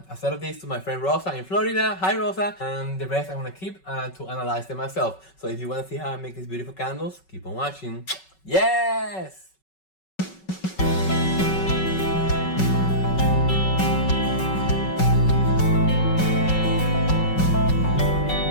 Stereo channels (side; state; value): right; late; 5.3 ms